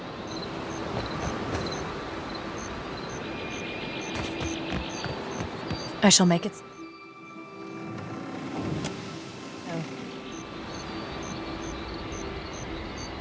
I shall make it.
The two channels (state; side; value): identical; both; correlation 1.00